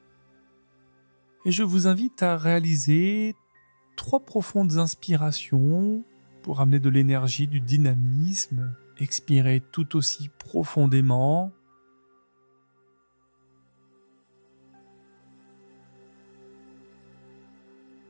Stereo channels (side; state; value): both; inverted; correlation -1.00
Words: Et je vous invite à réaliser 3 profondes inspirations pour amener de l'énergie, du dynamisme. Expirez tout aussi profondément.